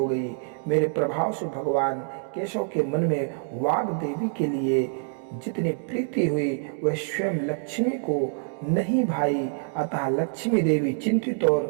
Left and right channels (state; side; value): silent; left; digital silence